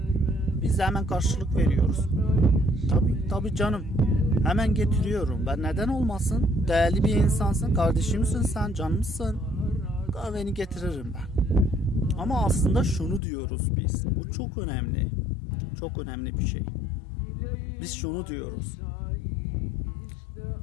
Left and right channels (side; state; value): right; drops out; at 13.2 s